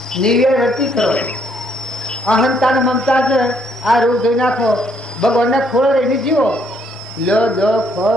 નિર્વ્યય રતી કરો. અહંતા મમતા છે આ રોગ ધોઈ નાખો, ભગવાનને ખોળો રહીને જીવો. લો દો ખો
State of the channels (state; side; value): normal; both; correlation 0.69